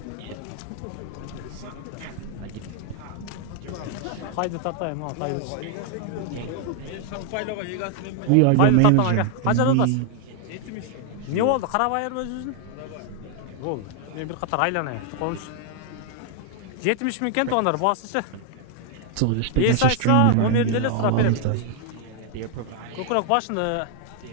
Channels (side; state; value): both; different; correlation 0.00